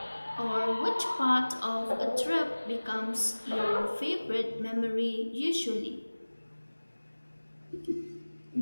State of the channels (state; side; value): inverted; both; correlation -1.00